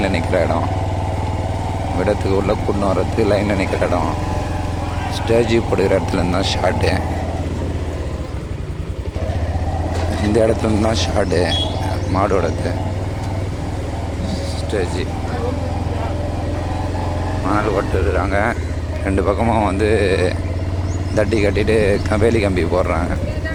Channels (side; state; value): both; identical; correlation 1.00